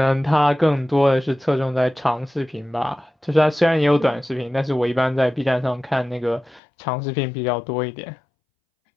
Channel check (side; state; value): right; drops out; at 6.6 s